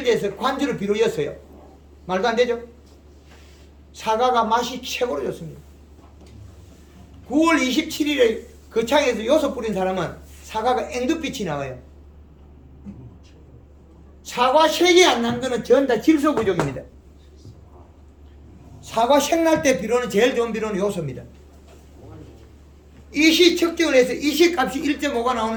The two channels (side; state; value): both; identical; correlation 1.00